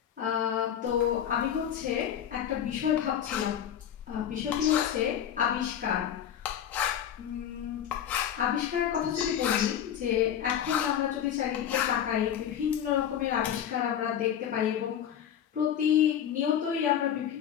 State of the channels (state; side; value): quieter; right; 9.6 dB